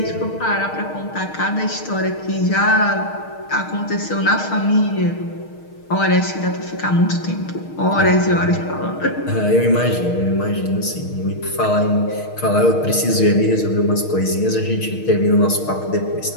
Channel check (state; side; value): late; right; 6.5 ms